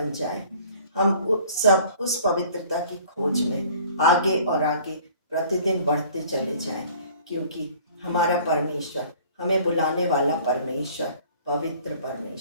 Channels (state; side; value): inverted; both; correlation -0.51